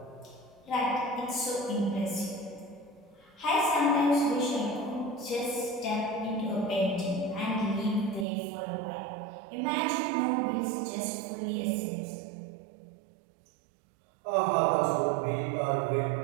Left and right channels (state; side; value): drops out; left; at 8.2 s